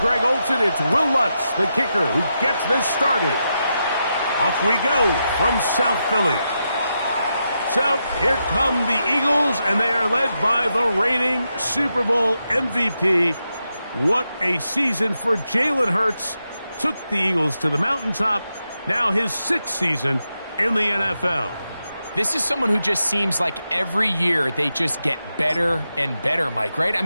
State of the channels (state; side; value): inverted; both; correlation -0.86